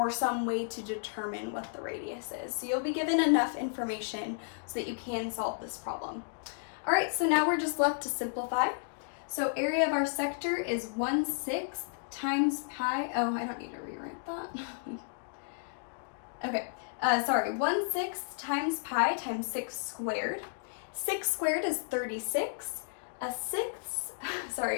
some way to determine what the radius is. So you'll be given enough information so that you can solve this problem. All right, so now we're just left to simplify. So area of our sector is 1/6 times pi. Oh, I don't need to rewrite that. Okay, sorry, 1/6 times pi times 6 squared. 6 squared is 36. A sixth,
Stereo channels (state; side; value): silent; right; digital silence